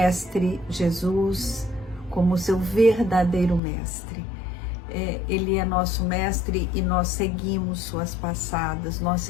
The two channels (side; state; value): right; drops out; at 3.6 s